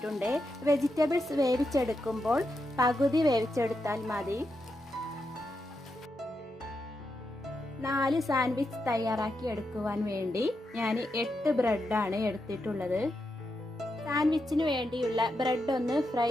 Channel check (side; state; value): both; normal; correlation 0.85